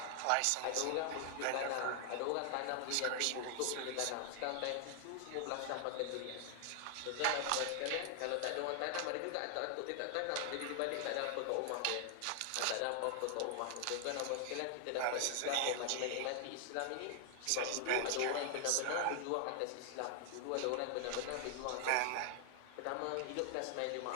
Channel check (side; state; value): both; different; correlation 0.00